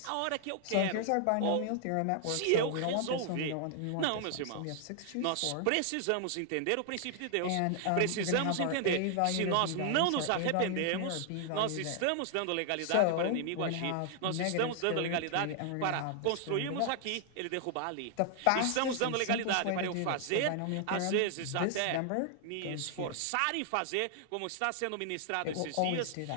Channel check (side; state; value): both; different; correlation 0.00